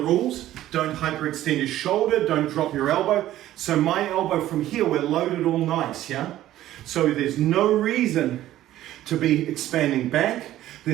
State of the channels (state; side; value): quieter; left; 13.8 dB